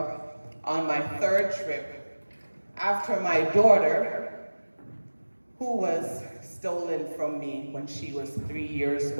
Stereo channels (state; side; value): inverted; both; correlation -1.00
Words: on my third trip after my daughter, who was stolen from me when she was 3 years